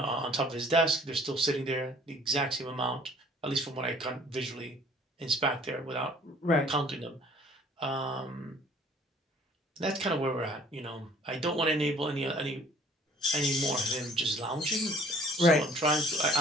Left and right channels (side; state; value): both; normal; correlation 0.54